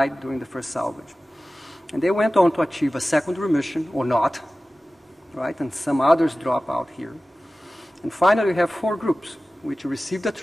during the first salvage. And they went on to achieve a second remission or not, right? And some others drop out here. And finally, we have 4 groups which received a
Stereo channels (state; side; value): normal; both; correlation 0.96